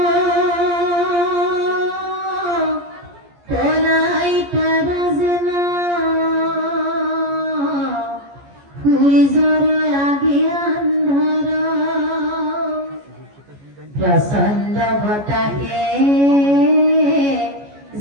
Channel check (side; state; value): left; late; 14 ms